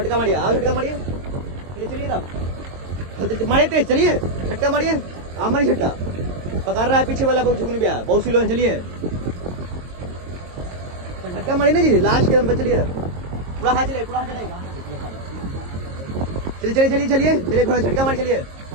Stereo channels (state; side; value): late; left; 22 ms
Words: मारिए, आओ झटका मारिए, चलिए चलिए तब मारिए तेज, चलिए झटका मारिए, आप मारिए झटका, पकड़ रहा है पीछे वाला, बहुत झुकने गया, बहुत स्लो है, चलिए झटका मारिए ना जी लास्ट के दम पे, चलिए पूरा हाथ चलिए, पूरा हाथ चलेगा, चलिए चलिए चलिए चलिए चलिए थोड़ा झटका मार, चलिए